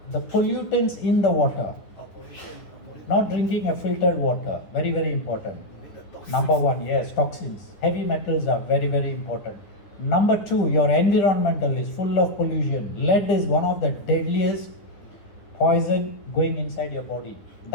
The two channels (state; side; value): late; right; 9.7 ms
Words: the pollutants in the water. pollution. Not drinking a filtered water, very, very important. With the toxins. Number one, yes, toxins. Heavy metals are very, very important. Number two, your environmental is full of pollution. Lead is one of the deadliest poison going inside your body.